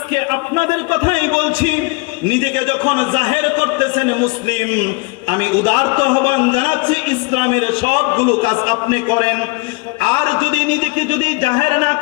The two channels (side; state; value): right; quieter; 28.3 dB